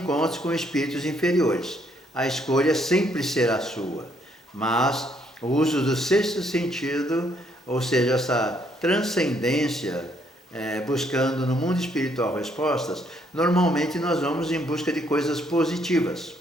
com espíritos inferiores. A escolha sempre será sua, mas o uso do 6º sentido, ou seja, essa transcendência, buscando no mundo espiritual respostas, normalmente nós vamos em busca de coisas positivas.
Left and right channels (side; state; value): both; normal; correlation 0.70